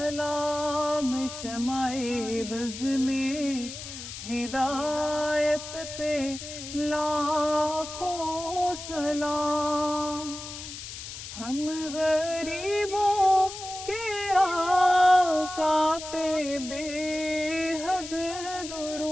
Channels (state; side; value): noise; left; hiss, 10 dB below the sound